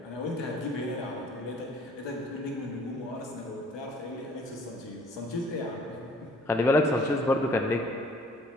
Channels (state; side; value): normal; both; correlation 0.55